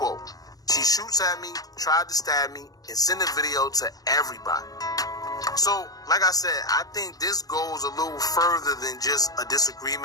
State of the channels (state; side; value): late; right; 0.18 ms